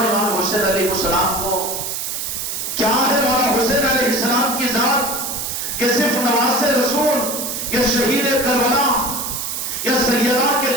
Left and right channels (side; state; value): right; noise; hiss, 4 dB below the sound